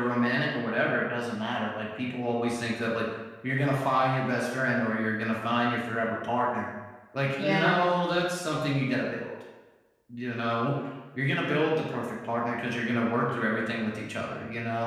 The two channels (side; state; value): both; identical; correlation 1.00